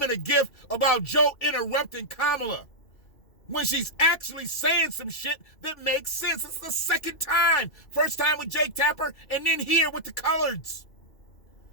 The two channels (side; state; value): right; late; 2.5 ms